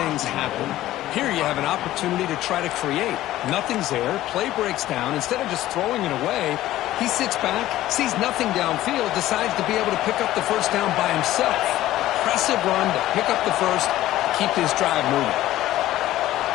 happen. Here you have an opportunity to try to create. Nothing's there. Play breaks down. Instead of just throwing it away, he sits back, sees nothing downfield, decides to be able to pick up the first down by himself. Impressive run to pick up the first, keep this drive moving.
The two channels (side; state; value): right; quieter; 14.8 dB